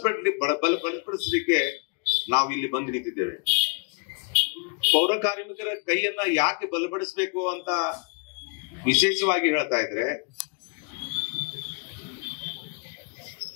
ನಾವು ಇಲ್ಲಿ ಬಂದು ನಿಂತಿದ್ದೇವೆ. ಪೌರ ಕಾರ್ಮಿಕರ ಕೈಯನ್ನ ಯಾಕೆ ಬಲಪಡಿಸಬೇಕು ಅಂತ ವಿಶೇಷವಾಗಿ ಹೇಳ್ತಾ ಇದ್ರೆ,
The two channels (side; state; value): right; quieter; 36.6 dB